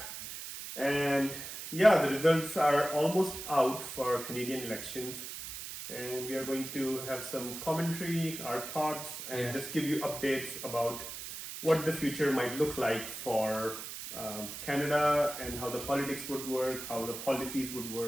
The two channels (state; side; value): noise; right; hiss, 8 dB below the sound